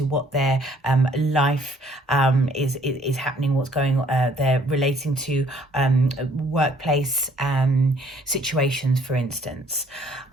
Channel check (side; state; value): both; normal; correlation 0.61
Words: what their life is happening, what's going on. They're relating to workplace situations, for instance.